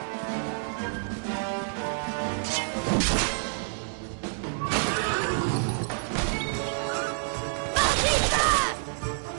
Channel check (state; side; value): silent; left; digital silence